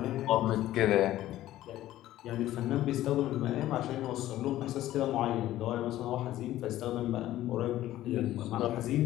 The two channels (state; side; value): quieter; right; 14.2 dB